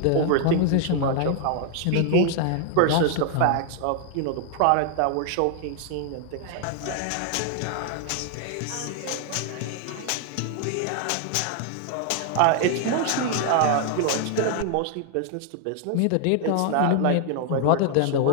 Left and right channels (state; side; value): different; both; correlation 0.00